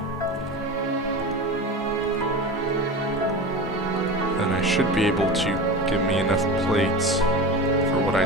then I should be able to give me enough plates for what I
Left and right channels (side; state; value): both; normal; correlation 0.29